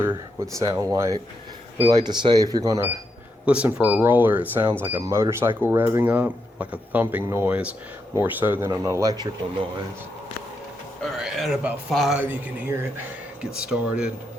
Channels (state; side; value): normal; both; correlation 0.82